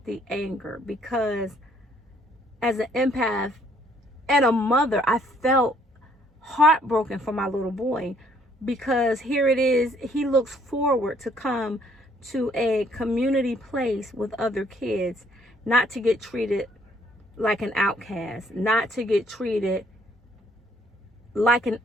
the anger, because as an empath and a mother, I felt heartbroken for my little boy, because here it is, he looks forward to come to a community place with other kids, not to get treated like an outcast, not to get treated like an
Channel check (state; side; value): normal; both; correlation 0.64